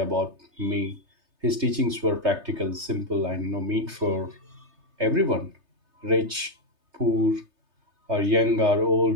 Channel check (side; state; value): left; late; 3.3 ms